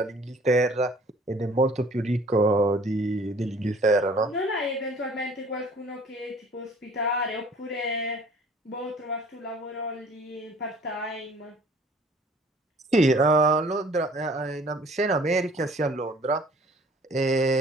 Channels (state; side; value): normal; both; correlation 0.53